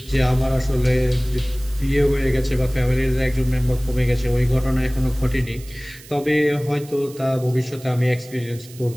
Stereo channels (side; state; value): right; noise; hiss, 20 dB below the sound